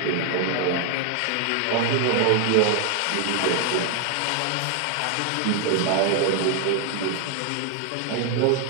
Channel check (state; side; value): different; both; correlation 0.00